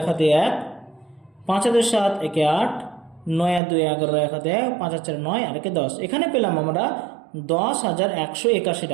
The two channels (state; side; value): drops out; left; at 3.6 s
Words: হাতে 1, 5 আর 2 7, 1 8, 9 আর 2 11, 1 হাতে 1, 5 আর 4 9, আর 1 10। এখানে পেলাম আমরা 10,181